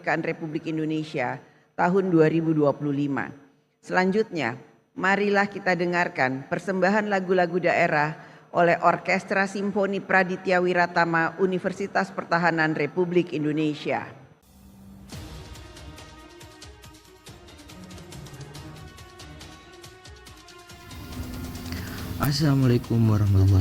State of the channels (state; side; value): identical; both; correlation 1.00